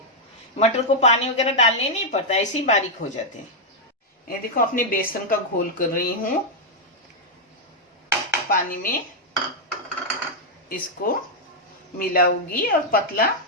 मटर को पानी वगैरह डालने नहीं पड़ता, ऐसे ही बारीक हो जाते हैं। ये देखो, अपने बेसन का घोल कर रही हूँ पानी में, इसको मिलाऊंगी और पतला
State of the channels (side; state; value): both; normal; correlation -0.03